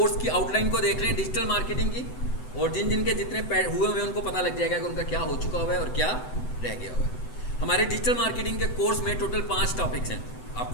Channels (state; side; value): late; right; 7.9 ms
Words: की आउटलाइन को देख रहे हैं डिजिटल मार्केटिंग की, और जिन जिनके जितने हुए हुए उनको पता लग जाएगा कि उनका क्या हो चुका हुआ है और क्या रह गया हुआ है। हमारे डिजिटल मार्केटिंग के कोर्स में टोटल 5 टॉपिक्स हैं,